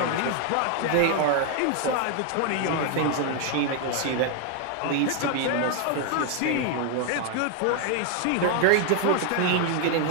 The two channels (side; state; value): both; different; correlation 0.01